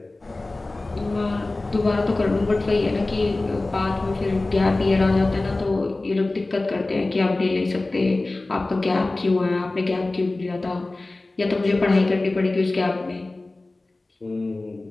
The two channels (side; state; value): right; quieter; 3.0 dB